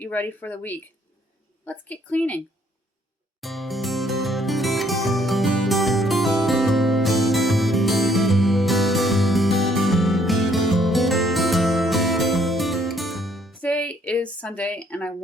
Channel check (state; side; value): normal; both; correlation 0.65